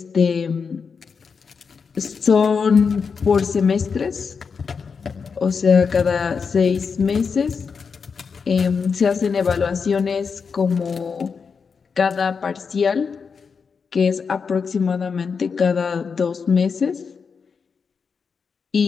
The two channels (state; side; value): quieter; right; 5.7 dB